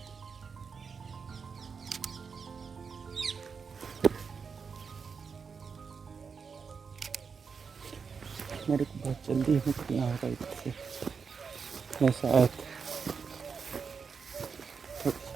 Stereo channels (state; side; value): quieter; left; 5.7 dB